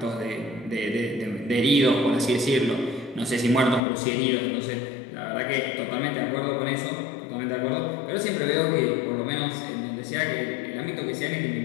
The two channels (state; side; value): drops out; right; at 3.8 s